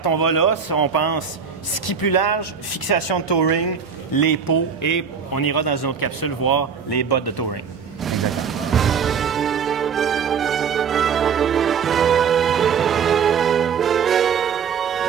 on va là, on pense ski plus large, fixation de touring, les pots et on ira dans une autre capsule voir les bottes de touring. Exactement.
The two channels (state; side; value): quieter; left; 6.6 dB